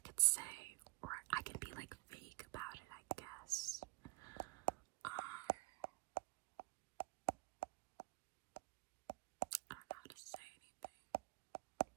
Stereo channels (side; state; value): left; quieter; 23.2 dB